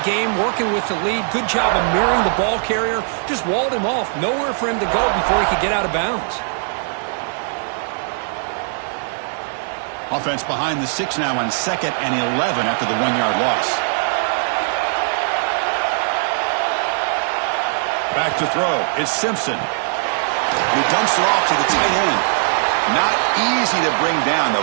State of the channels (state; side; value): silent; left; digital silence